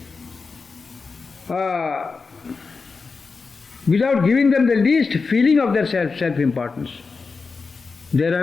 without giving them the least feeling of their self-importance. There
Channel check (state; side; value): quieter; right; 4.6 dB